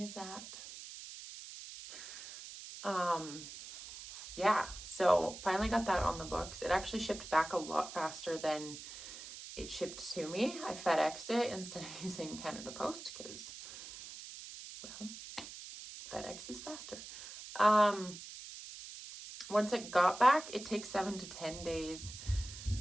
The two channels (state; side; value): noise; right; hiss, 12 dB below the sound